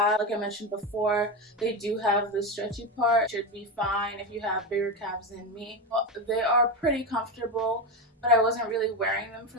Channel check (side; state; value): both; normal; correlation 0.15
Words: Like I mentioned before, they do have the stretchy part. Should be fine if you have bigger calves than me. They are pretty comfortable, but I wasn't really wearing them